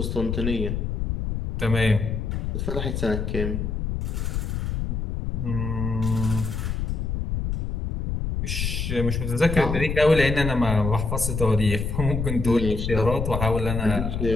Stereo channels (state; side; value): noise; left; rumble, 2 dB below the sound